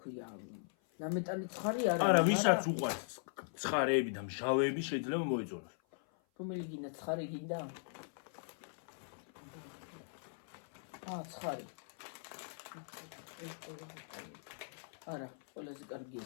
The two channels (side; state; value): right; silent; 51 dB below the other